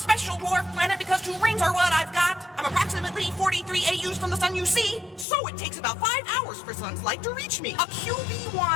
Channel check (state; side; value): drops out; right; at 5.2 s